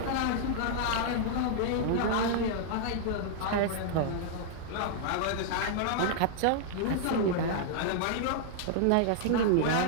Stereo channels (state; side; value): different; both; correlation -0.01